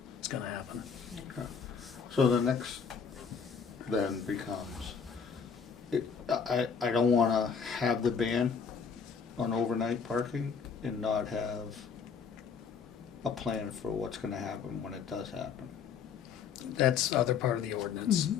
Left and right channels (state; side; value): quieter; right; 6.2 dB